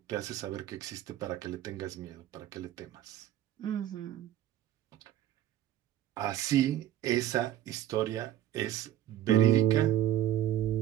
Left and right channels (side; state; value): left; quieter; 12.2 dB